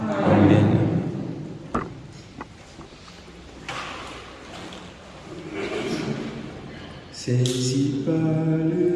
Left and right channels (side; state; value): both; identical; correlation 1.00